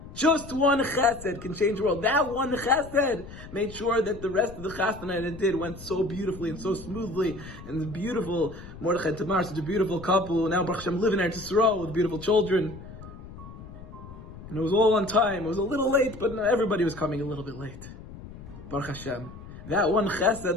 Just one chesed can change the world. That one chesed made sure that the rest of the chasna that it did went so beautifully and so smoothly. And the beautiful Mordechai and Tamar, such a beautiful couple. Now Baruch Hashem living in Eretz Yisrael with beautiful children. And it was all on time. It was a little late, but everybody was coming a little bit late. Baruch Hashem. That one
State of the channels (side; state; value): left; noise; rumble, 15 dB below the sound